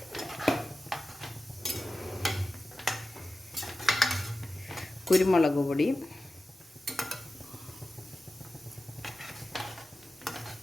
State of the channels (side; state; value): both; normal; correlation 0.94